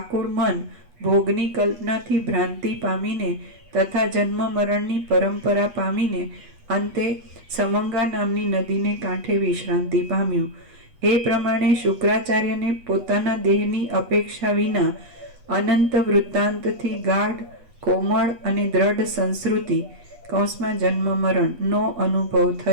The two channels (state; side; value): late; left; 8.3 ms